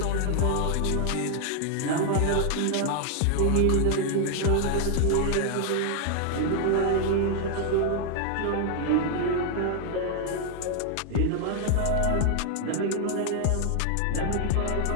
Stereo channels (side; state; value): both; different; correlation 0.00